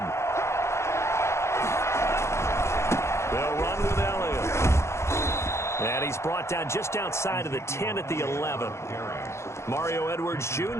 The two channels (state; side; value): late; right; 0.13 ms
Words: They'll run with Elliott. And he's brought down just outside of the 10 at the 11. Mario Edwards